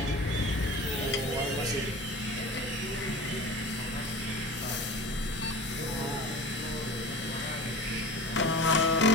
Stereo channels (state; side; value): normal; both; correlation 0.36